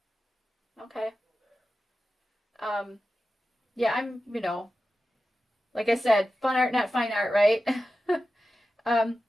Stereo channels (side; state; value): both; normal; correlation 0.93